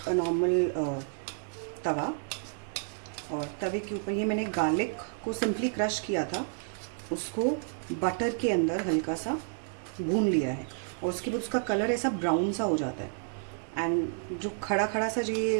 a normal तवा, और तवे के ऊपर ये मैंने गार्लिक को सिंपली क्रश किया था, उसको बटर के अंदर हल्का सा भून लिया है। और उसके बाद उसका कलर ऐसा ब्राउन सा हो जाता है। एंड जो खड़ा खड़ा सा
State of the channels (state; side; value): silent; left; digital silence